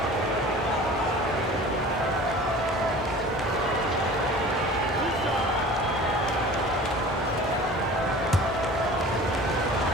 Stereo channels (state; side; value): normal; both; correlation 0.42